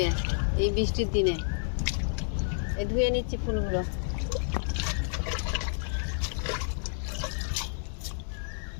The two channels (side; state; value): right; silent; digital silence